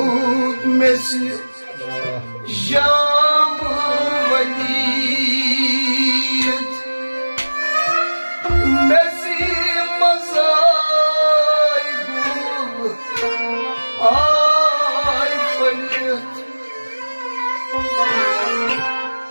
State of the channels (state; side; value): inverted; both; correlation -1.00